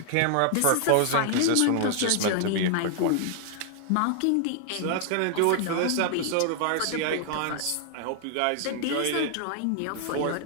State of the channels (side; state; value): both; different; correlation -0.01